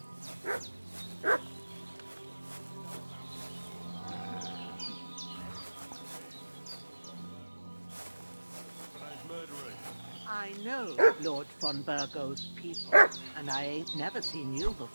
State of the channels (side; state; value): both; inverted; correlation -1.00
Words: I know Lord von Burgov's people, and I ain't never seen you